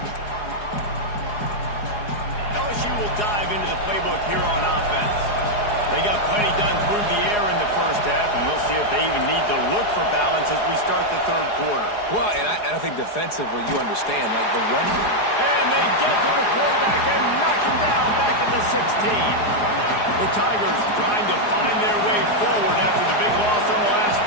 LSU will dive into the playbook here on offense. They got plenty done through the air in the first half, and we'll see if they even need to look for balance as we start the third quarter. Well, and I think defensively, you understand, like the run. And they get to the quarterback and knock him down back at the 16. The Tigers trying to find their way forward after the big loss on the last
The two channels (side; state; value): right; late; 4.8 ms